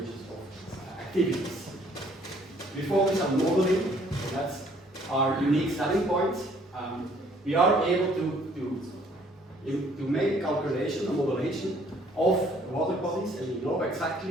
of activities. We focus on modeling, so that's our unique selling point. We are able to make a calculation, a modelation of water bodies, and we know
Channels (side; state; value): both; normal; correlation 0.61